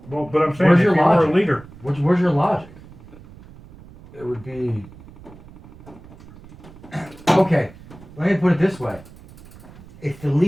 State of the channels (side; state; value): right; noise; rumble, 21 dB below the sound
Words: Well, but I'm saying Where's if your you were a logic? leader. Where's your logic? It would be... Okay, let me put it this way. It's the